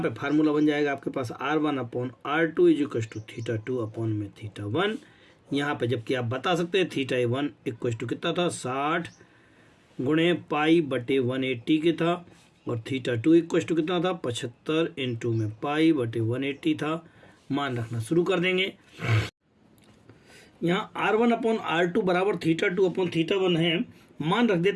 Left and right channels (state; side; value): identical; both; correlation 1.00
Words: पे फार्मूला बन जाएगा आपके पास R1/R2 = θ2 अपॉन में θ1। यहाँ पे जबकि आप बता सकते हैं θ1 = कितना था, 60 गुणे पाई/180 के था, और θ2 = कितना था, 75 इंटू में पाई/180 था। मान रखना शुरू कर देंगे। यहाँ R1/R2 बराबर θ2 अपॉन θ1 है, मान रख